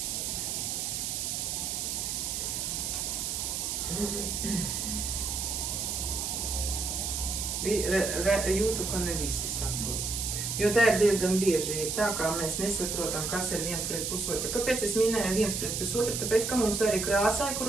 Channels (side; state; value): right; noise; hiss, 2 dB below the sound